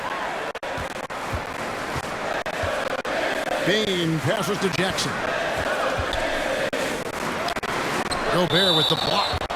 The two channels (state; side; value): identical; both; correlation 1.00